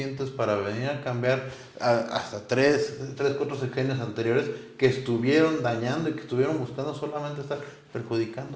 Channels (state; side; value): identical; both; correlation 1.00